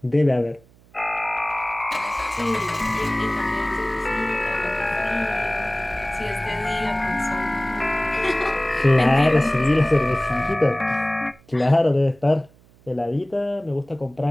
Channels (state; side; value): noise; right; hum, 28 dB below the sound